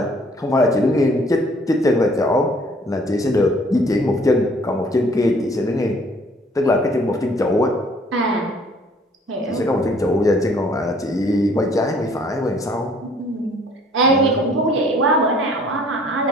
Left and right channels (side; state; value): both; normal; correlation 0.58